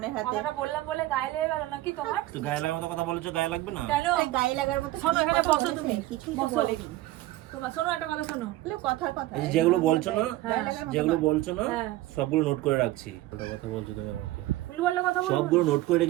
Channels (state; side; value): quieter; left; 16.9 dB